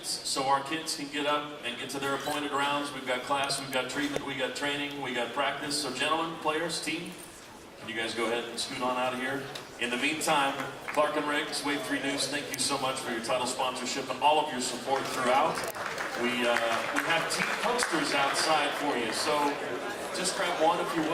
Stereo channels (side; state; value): both; identical; correlation 1.00